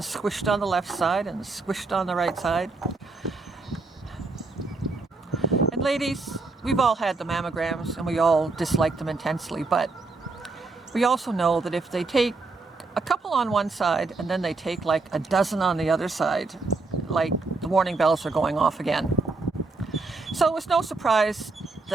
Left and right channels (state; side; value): quieter; left; 3.7 dB